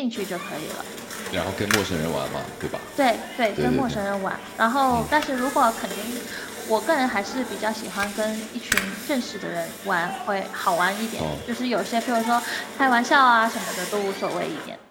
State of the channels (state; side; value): identical; both; correlation 1.00